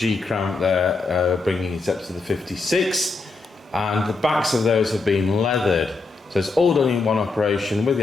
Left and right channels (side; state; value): right; quieter; 3.8 dB